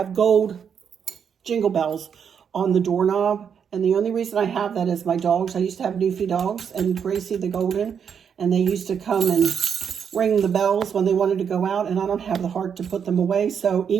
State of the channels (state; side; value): quieter; left; 7.4 dB